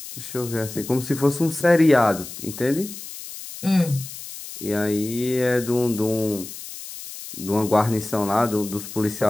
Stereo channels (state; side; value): noise; left; hiss, 12 dB below the sound